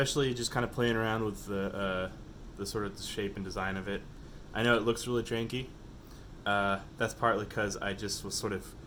just kind of playing around with the sort of shape and design of it. I know it looks really janky. That's partly because I just was sort of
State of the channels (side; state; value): both; identical; correlation 1.00